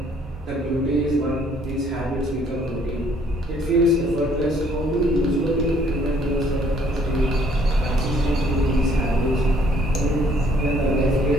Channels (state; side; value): normal; both; correlation 0.62